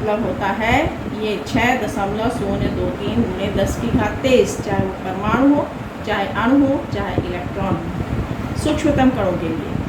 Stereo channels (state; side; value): identical; both; correlation 1.00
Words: होता है ये 6.023 गुणे 10 की घात 23, चाहे वो परमाणु हो, चाहे अणु हो, चाहे इलेक्ट्रॉन हो। सूक्ष्मतम कणों के लिए